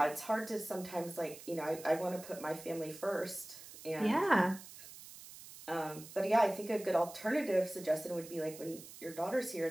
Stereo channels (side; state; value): right; noise; hiss, 16 dB below the sound